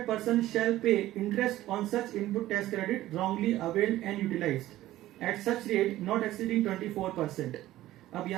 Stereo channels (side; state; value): left; quieter; 15.1 dB